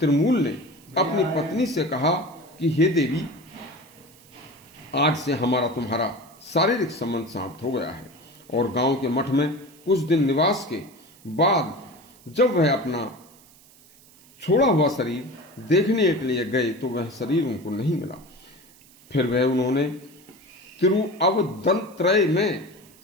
ने अपनी पत्नी से कहा कि हे देवी, आज से हमारा तुम्हारा शारीरिक संबंध समाप्त हो गया है। और गांव के मठ में कुछ दिन निवास के बाद जब वह अपना छोड़ा हुआ शरीर देखने के लिए गए तो वह शरीर उनको नहीं मिला। फिर वह उन्होंने तिरुअवदंत्रय में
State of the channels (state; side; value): noise; right; hiss, 26 dB below the sound